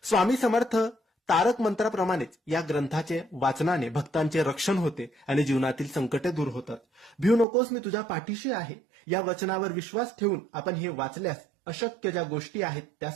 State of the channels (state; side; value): drops out; left; at 7.5 s